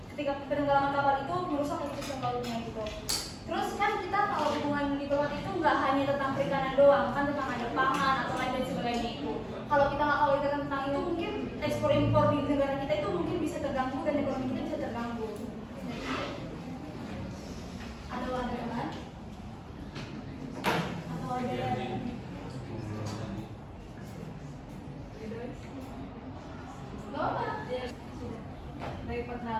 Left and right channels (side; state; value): both; identical; correlation 1.00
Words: Ketika penenggelaman kapal itu merusak ekosistem lautnya gitu. Terus kan kita kalau hubungan diplomatik itu nggak hanya tentang perikanan doang, kan tentang ada pangan atau lain dan sebagainya itu. Kalau kita nggak tahu tentang itu, mungkin ekspor impor di negara kita itu mungkin bisa terganggu dan ekonomi kita bisa terganggu. Ada tambahan? Atau ada Baik,